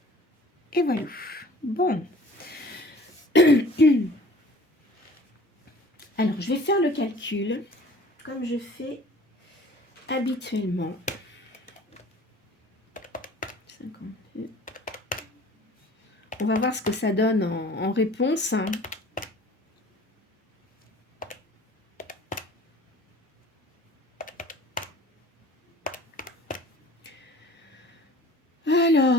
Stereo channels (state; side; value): normal; both; correlation 0.47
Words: Et voilà. Bon. Alors, je vais faire le calcul, comme je fais habituellement. 52. On va voir ce que ça donne en réponse.